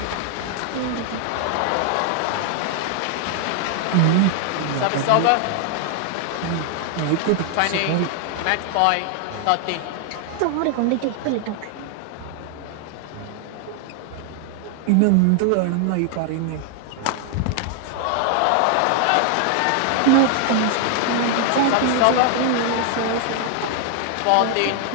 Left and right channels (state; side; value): different; both; correlation 0.00